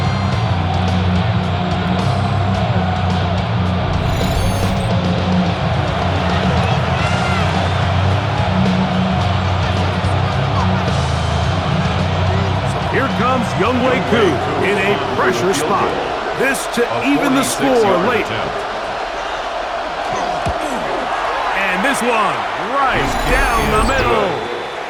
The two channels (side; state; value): both; identical; correlation 1.00